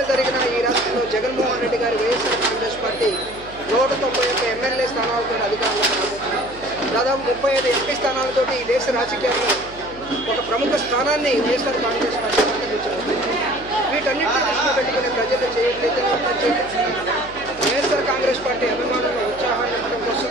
జరిగినా ఈ రాష్ట్రంలో జగన్మోహన్ రెడ్డి గారి వైఎస్ఆర్ కాంగ్రెస్ పార్టీ 191 ఎమ్మెల్యే స్థానాలతో అధికారంలోకి రాబోతుంది. దాదాపు 35 ఎంపీ స్థానాలతో ఈ దేశ రాజకీయాల్లో ఒక ప్రముఖ స్థానాన్ని వైఎస్ఆర్ కాంగ్రెస్ పార్టీ అలంకరించబోతుంది. వీటన్నిటిని దృష్టిలో పెట్టుకునే ప్రజలు చేయట్లేదు. వైఎస్ఆర్ కాంగ్రెస్ పార్టీ అభిమానుల ఉత్సాహాన్ని నింపడం కోసం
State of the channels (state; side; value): noise; left; hum, 18 dB below the sound